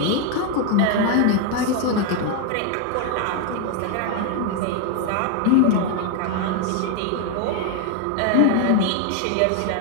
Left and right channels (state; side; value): different; both; correlation 0.01